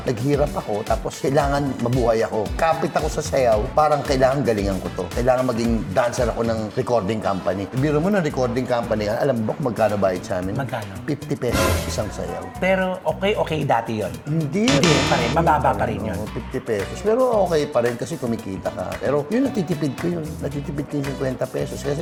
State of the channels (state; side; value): identical; both; correlation 1.00